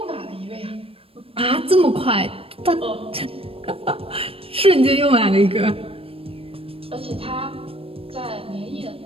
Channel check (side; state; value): left; late; 0.27 ms